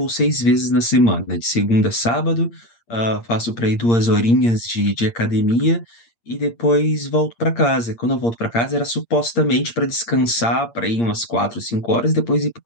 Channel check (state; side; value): late; right; 8.6 ms